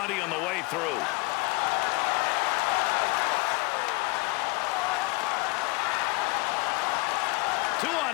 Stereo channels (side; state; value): right; quieter; 25.3 dB